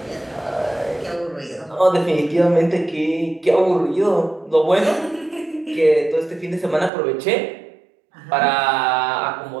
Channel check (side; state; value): left; drops out; at 6.9 s